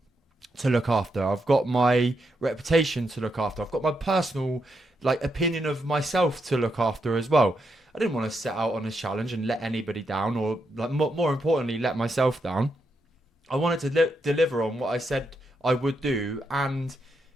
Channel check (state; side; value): normal; both; correlation 0.82